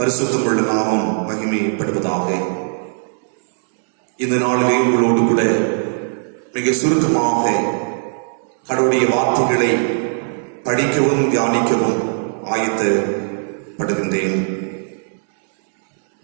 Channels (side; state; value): left; silent; digital silence